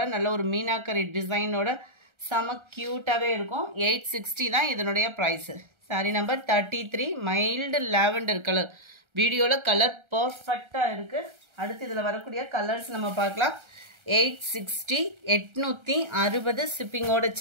நல்ல ஒரு மீனாக்கரி டிசைனோட செம க்யூட்டாகவே இருக்கும். 860 தான் இதனுடைய price. Sari number 33 mild lavender colour. வீடியோவில் கலர் பர்ஃபெக்டாக இருக்குது. அடுத்து இதில் வரக்கூடிய கலர்ஸ் நம்ம பார்க்கலாம். 860 860 ஷிப்பிங்கோட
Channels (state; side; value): late; left; 1.3 ms